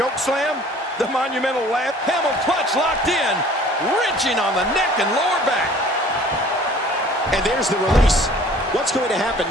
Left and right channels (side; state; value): both; normal; correlation 0.50